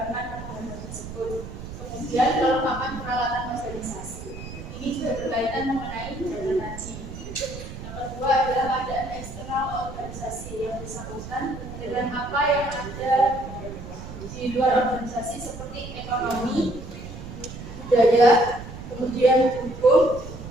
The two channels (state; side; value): noise; right; rumble, 11 dB below the sound